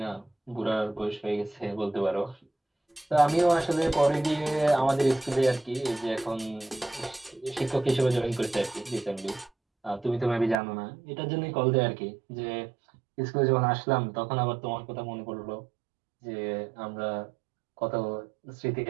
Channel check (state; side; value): drops out; left; at 10.6 s